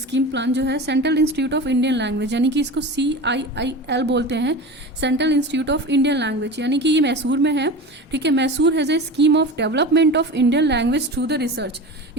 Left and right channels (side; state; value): both; normal; correlation 0.30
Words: प्लान जो है central Institute of Indian language, यानी कि इसको CIIL बोलते हैं, central Institute of Indian language, यानी कि ये मैसूर में है. ठीक है, Mysore has a scheme of development of Indian language through the research.